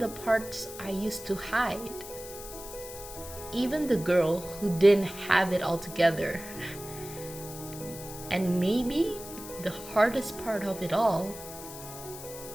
parts I used to hide. Even the girl who didn't have it all together. And maybe the hardest part of it all,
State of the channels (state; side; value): noise; left; hiss, 13 dB below the sound